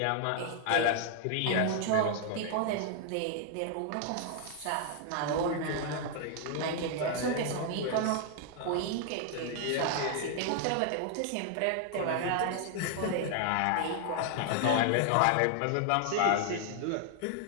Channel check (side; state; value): both; different; correlation 0.00